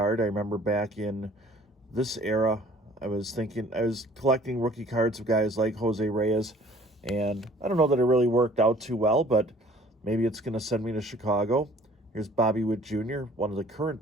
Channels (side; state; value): both; normal; correlation 0.53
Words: I remember back in this era, I was collecting rookie cards of guys like Jose Reyes, and I don't know that it really worked out too well, but maybe it's going to send me to Chicago. Here's Bobby Witt Jr., one of the